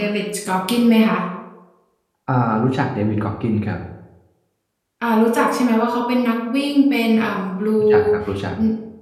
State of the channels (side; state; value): both; identical; correlation 1.00